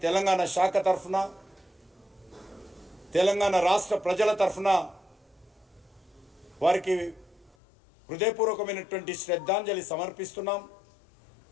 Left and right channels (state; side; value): drops out; right; at 7.6 s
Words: తెలంగాణ శాఖ తరఫున తెలంగాణ రాష్ట్ర ప్రజల తరఫున వారికి హృదయపూర్వకమైనటువంటి శ్రద్ధాంజలి సమర్పిస్తున్నాం।